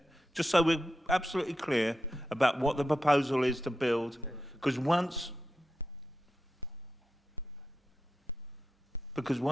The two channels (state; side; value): normal; both; correlation 0.89